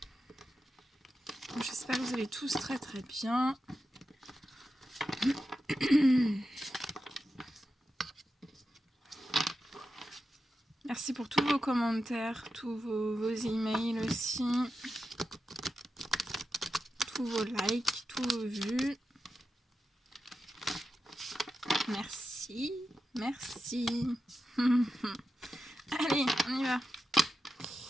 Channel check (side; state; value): both; normal; correlation 0.90